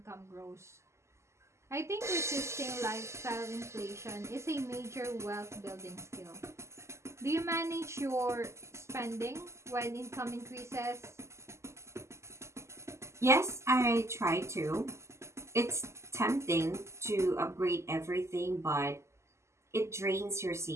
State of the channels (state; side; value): late; left; 0.13 ms